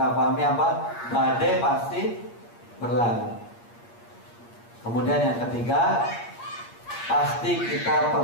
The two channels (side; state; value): right; late; 8.6 ms